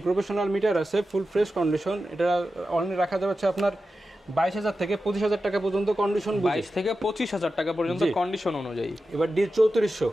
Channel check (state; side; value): normal; both; correlation 0.92